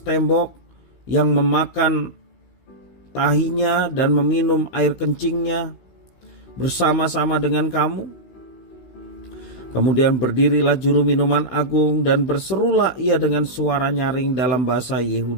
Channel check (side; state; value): right; late; 16 ms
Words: tembok, yang memakan tahinya dan meminum air kencingnya bersama-sama dengan kamu? Kemudian berdirilah juru minuman agung dan berserulah ia dengan suara nyaring dalam bahasa